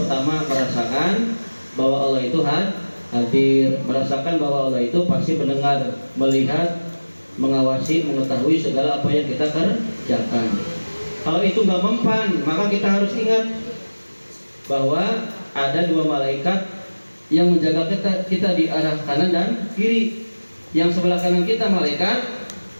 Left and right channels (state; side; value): inverted; both; correlation -1.00